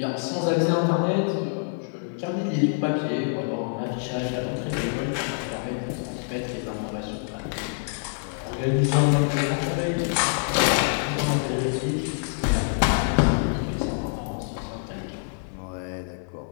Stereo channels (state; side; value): silent; right; 61 dB below the other